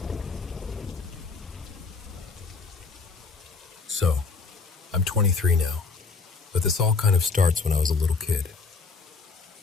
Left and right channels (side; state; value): right; quieter; 4.5 dB